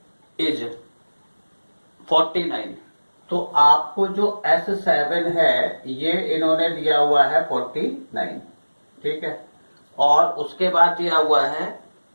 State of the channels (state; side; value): inverted; both; correlation -1.00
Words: is 49, तो आपको जो S7 है ये इन्होंने दिया हुआ है 49। ठीक है, और उसके बाद दिया हुआ है